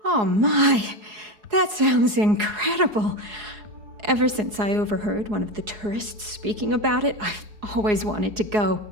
Oh my, that sounds incredible. Ever since I overheard one of the tourists speaking about it, I've always wanted to go.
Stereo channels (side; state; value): left; late; 4.7 ms